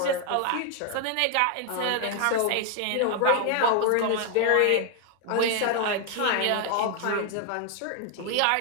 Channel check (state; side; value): different; both; correlation 0.00